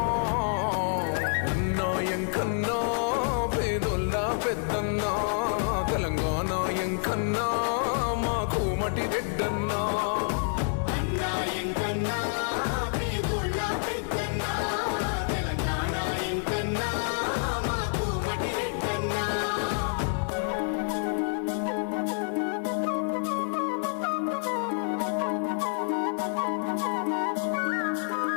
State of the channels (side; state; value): right; silent; 59 dB below the other